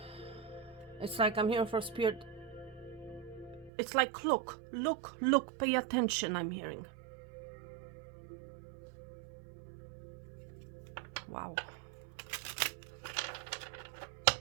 It's like I'm hearing for Spirit. It's like, look, pay attention, I'm hearing. Wow.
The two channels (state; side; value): drops out; left; at 3.7 s